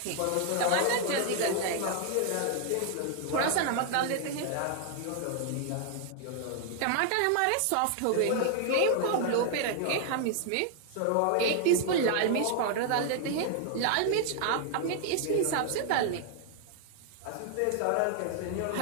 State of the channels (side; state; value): both; different; correlation 0.00